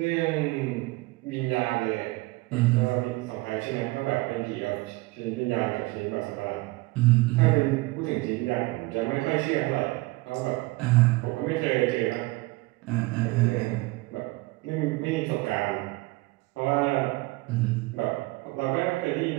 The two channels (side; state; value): left; quieter; 22.5 dB